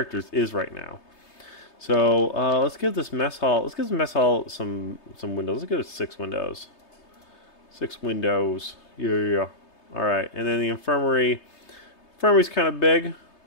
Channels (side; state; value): right; late; 3.3 ms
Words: is right now. So let's give this mess hall. Let's give this mess hall some windows. Let's give it 6 windows. 6 windows. Yeah. All right, and then the infirmary. Infirmary's kind of big,